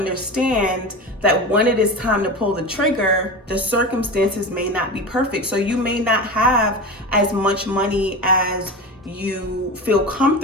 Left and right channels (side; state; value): both; normal; correlation 0.27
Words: that when it is time to pull the trigger, the circumstances may not be perfect. So you may not have as much money as you feel